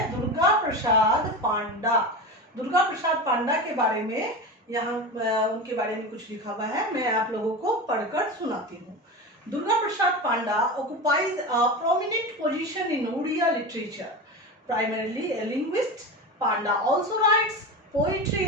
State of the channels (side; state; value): both; normal; correlation 0.25